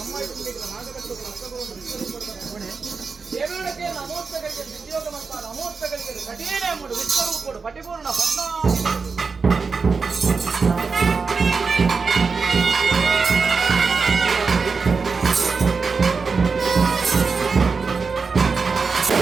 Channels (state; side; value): quieter; left; 4.9 dB